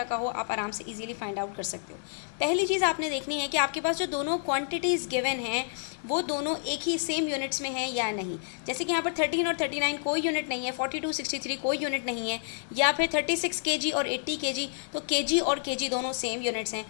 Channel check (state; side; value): silent; right; digital silence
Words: का हो आप आराम से इजीली फाइंड आउट कर सकते हो। पहली चीज़ आपने देखनी है कि आपके पास जो दोनों क्वांटिटीज़ गिवन हैं वो दोनों एक ही सेम यूनिट्स में हैं या नहीं। जैसे कि यहाँ पर 13 और 39 कोई यूनिट नहीं है, 42 63 कोई यूनिट नहीं है, या फिर 36 kg और 80 kg, तो kg और kg दोनों सेम यूनिट्स हैं,